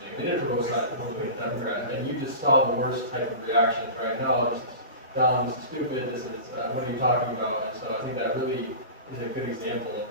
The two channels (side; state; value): both; inverted; correlation -0.32